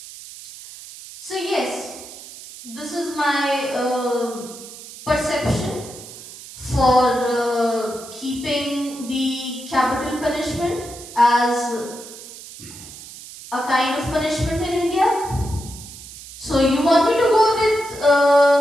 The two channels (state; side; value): noise; right; hiss, 15 dB below the sound